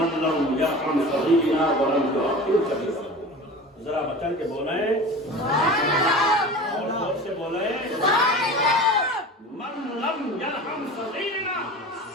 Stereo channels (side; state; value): both; normal; correlation 0.35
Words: لم يرحم صغيرنا ولم يعقل ذرا بچن کے بولیں اور زور سے بولیں من لم یرحم صغیرنا